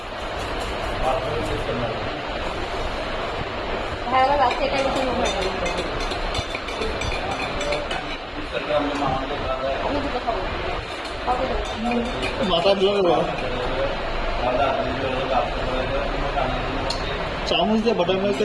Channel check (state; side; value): identical; both; correlation 1.00